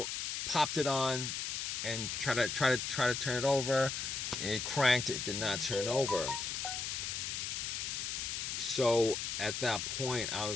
popped it on, and try to turn it over. It cranked. It did not turn over. So at that point, I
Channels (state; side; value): noise; left; hiss, 3 dB below the sound